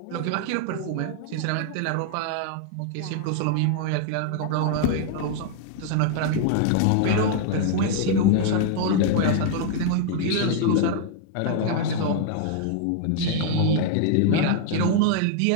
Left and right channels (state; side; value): different; both; correlation 0.00